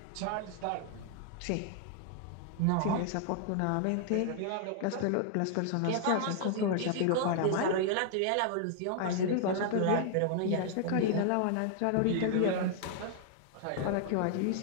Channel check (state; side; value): different; both; correlation -0.01